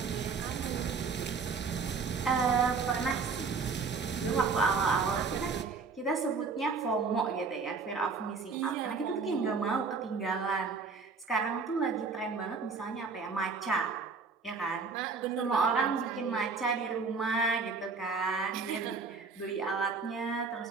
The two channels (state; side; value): quieter; left; 4.8 dB